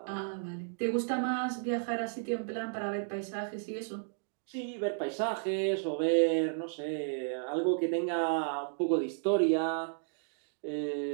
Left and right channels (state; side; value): silent; left; digital silence